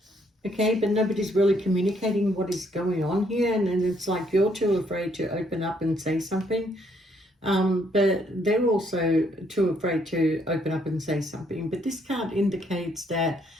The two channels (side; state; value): both; normal; correlation 0.69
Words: Okay, but nobody's really communicating what is going on here, and it's like you're too afraid to open up and say something, but they're also too afraid to open up and say something. But this card indicates that